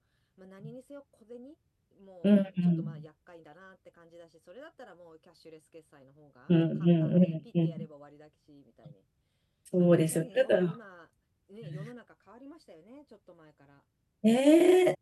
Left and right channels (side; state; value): both; identical; correlation 1.00